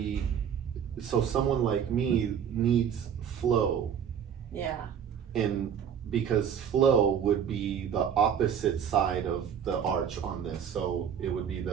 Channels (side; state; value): left; quieter; 8.2 dB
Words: So someone like me needs flow, and because flow would be the opposite side of the arch on this, so it would be